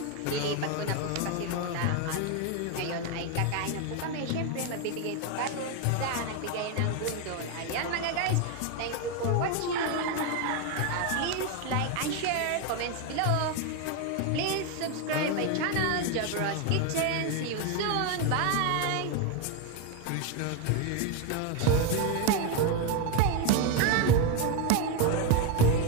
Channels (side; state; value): both; different; correlation 0.02